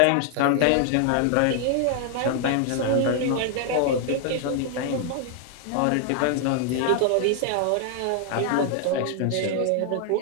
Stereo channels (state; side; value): different; both; correlation 0.00